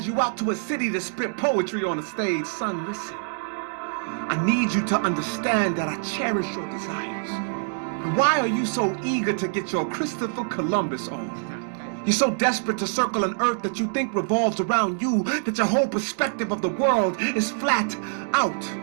you out to a city to spit poetry on a stage. Son, listen. I need you to understand that I cherish your desires. But why are you so eager to get your Christopher Columbus on? You're so desperate to circle an earth that you think revolves around you, that your whole perspective of the world is flat out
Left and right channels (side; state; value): left; silent; 62 dB below the other